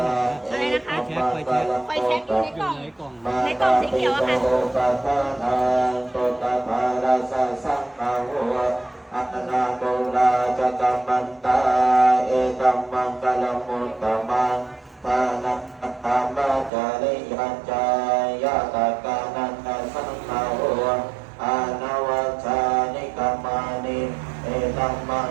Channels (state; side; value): drops out; left; at 16.7 s